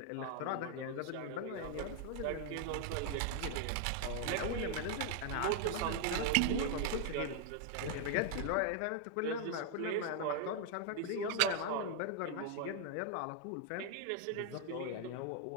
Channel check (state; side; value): different; both; correlation 0.00